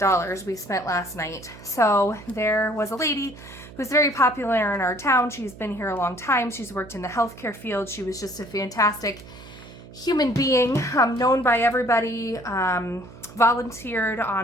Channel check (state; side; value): noise; right; hum, 18 dB below the sound